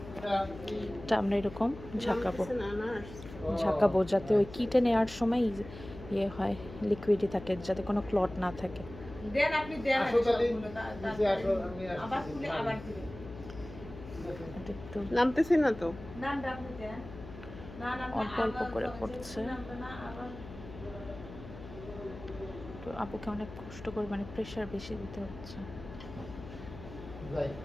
এটা আমরা এরকম ঝাঁকাবো যাতে ওই কিটে নেওয়ার সময় ইয়ে হয়, লিকুইডই থাকে, যাতে কোনো ক্লট না থাকে। দেন, আপনি দেন আবার খুলে আবার দিবেন। এটা একটু নামতেছে না তো? নামটা আপনি দেন। না না, অল্প অল্প করে পড়ছে। নামটা না আবার। তো আপুকে অনেক কষ্ট করে, মানে প্রেশার বেশি দিতে হচ্ছে।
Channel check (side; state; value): left; noise; hum, 14 dB below the sound